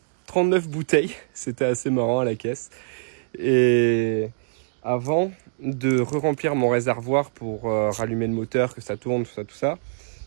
39 bouteilles. C'était assez marrant à la caisse. Et avant de re-remplir mon réservoir pour rallumer le moteur, que ça tourne, tout ça,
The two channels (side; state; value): left; silent; digital silence